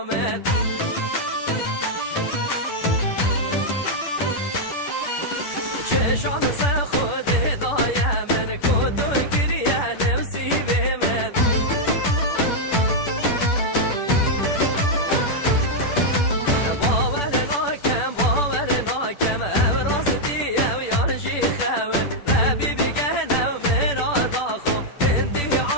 چشان سه خود دایم من کتو گریه نفسی به من باور ناکم امراز دیم یارشی خور ربی بگه نو من آداخو هندی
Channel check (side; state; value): right; late; 10 ms